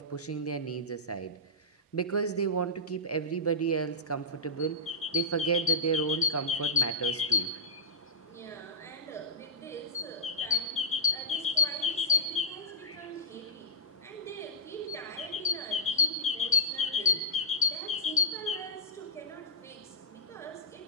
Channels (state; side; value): normal; both; correlation -0.17